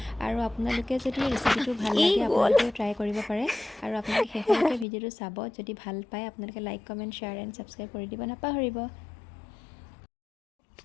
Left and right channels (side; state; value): right; drops out; at 4.9 s